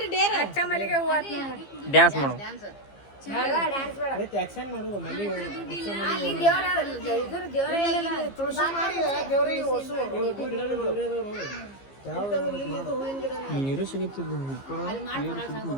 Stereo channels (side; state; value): right; late; 15 ms